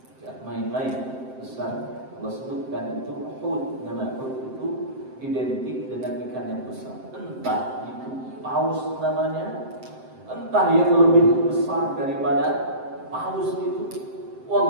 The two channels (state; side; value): late; left; 7.7 ms